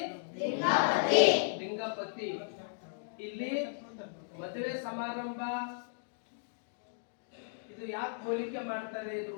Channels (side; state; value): right; silent; digital silence